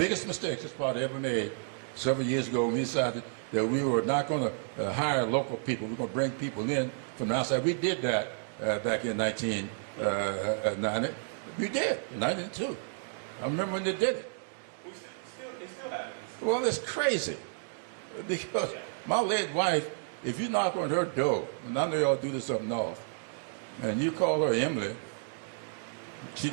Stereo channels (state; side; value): silent; left; digital silence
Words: biggest mistakes this party ever made several years ago, we decided that we were not going to hire local people. We were going to bring people in from outside. We did that back in 1990. We did, in 1992. I remember when they did it. It still happens. Well, it's crazy. Because my late wife, if you knock on her door, and I know y'all do this up north, and you call her Emily, she's